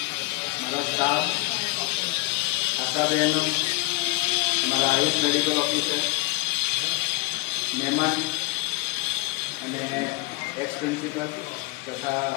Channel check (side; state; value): right; quieter; 22.1 dB